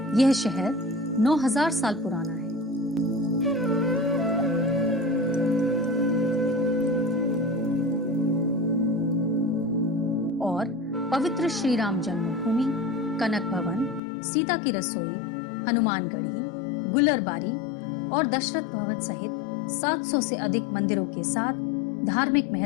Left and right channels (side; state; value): right; drops out; at 14.0 s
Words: यह शहर 9000 साल पुराना है। और पवित्र श्री राम जन्मभूमि, कनक भवन, सीता की रसोई, हनुमानगढ़ी, गुलरबारी और दशरथ भवन सहित 700 से अधिक मंदिरों के साथ धार्मिक